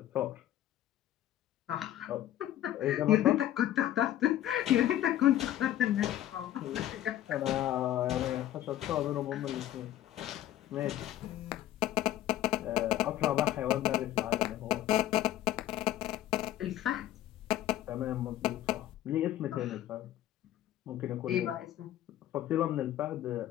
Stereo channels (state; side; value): quieter; right; 12.9 dB